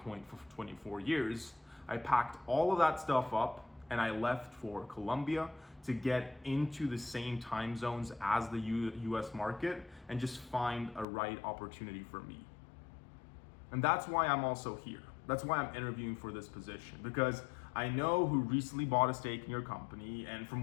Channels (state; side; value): drops out; right; at 11.1 s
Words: for 24 years. I packed all of that stuff up and I left for Colombia to get into the same time zones as the US market and just find a right opportunity for me. And that's why I'm also here. That's why I'm interviewing for this position, because I know who recently bought a stake in your company, and